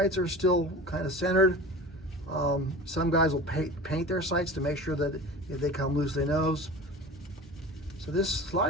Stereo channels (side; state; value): both; normal; correlation 0.35